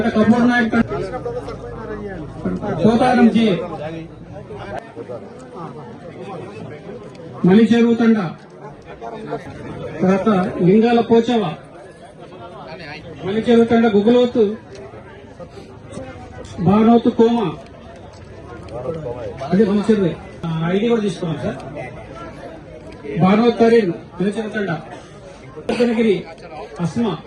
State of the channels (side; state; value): both; identical; correlation 1.00